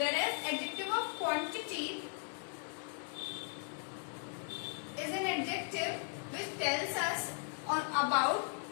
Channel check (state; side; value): silent; right; 53 dB below the other